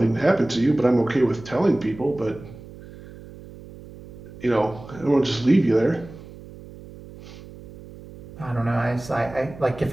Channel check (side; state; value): right; noise; hum, 17 dB below the sound